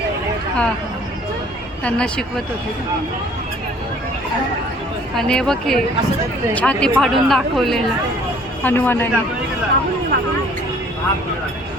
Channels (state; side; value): normal; both; correlation 0.55